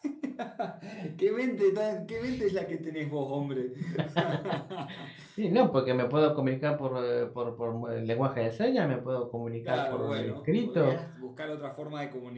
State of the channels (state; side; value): identical; both; correlation 1.00